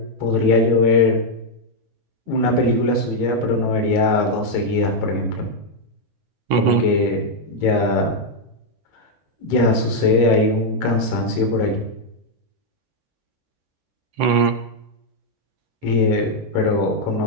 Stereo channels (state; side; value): late; left; 12 ms